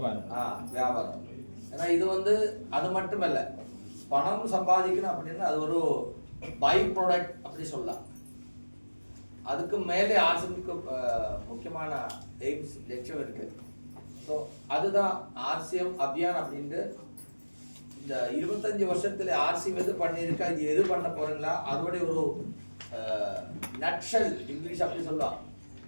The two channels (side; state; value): both; inverted; correlation -1.00